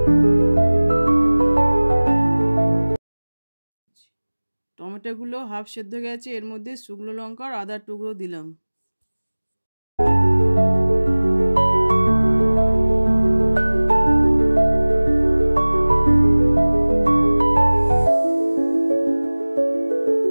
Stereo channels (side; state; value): both; inverted; correlation -1.00